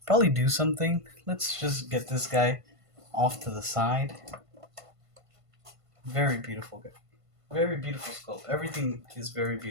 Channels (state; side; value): late; left; 1.5 ms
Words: probably do something. Let's just get this guy off to the side. Very beautiful guy. Very beautiful sculpt. Everything is very